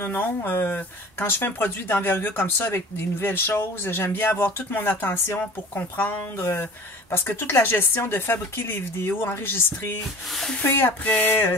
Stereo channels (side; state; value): both; normal; correlation 0.42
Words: Quand je fais un produit d'envergure comme ça, avec des nouvelles choses, j'aime bien avoir toute mon attention pour comprendre, parce que toute la gestion de fabriquer les vidéos, enregistrer, couper